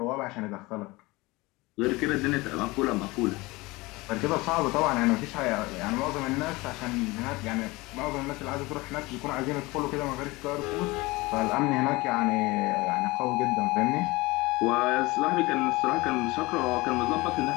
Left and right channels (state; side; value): quieter; right; 22.3 dB